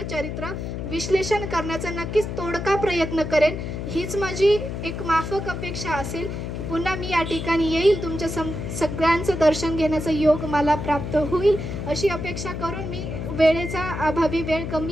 चरित्र विश्लेषण करण्याचा नक्कीच तोडका प्रयत्न करेन. हीच माझी एक माफक अपेक्षा असेल की पुन्हा मी या ठिकाणी येईल, तुमच्या सगळ्यांचं दर्शन घेण्याचा योग मला प्राप्त होईल अशी अपेक्षा करून मी वेळेचा अभावी, वेळ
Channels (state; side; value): noise; left; hum, 5 dB below the sound